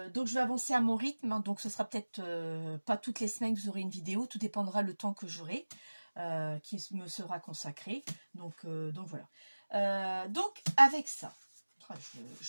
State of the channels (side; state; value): both; inverted; correlation -1.00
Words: donc je vais avancer à mon rythme, hein, donc ce sera peut-être pas toutes les semaines que vous aurez une vidéo, tout dépendra le temps que j'aurai, qui me sera consacré, donc voilà. Donc avec ça,